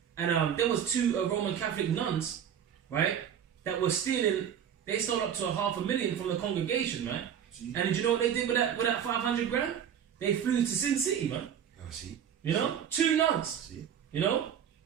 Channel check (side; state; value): left; quieter; 8.8 dB